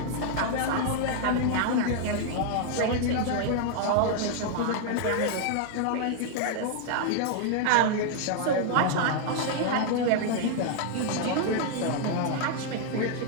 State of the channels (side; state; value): both; different; correlation 0.00